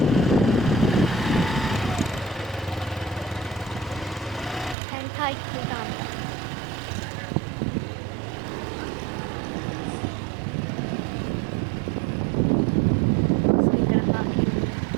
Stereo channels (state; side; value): drops out; left; at 4.8 s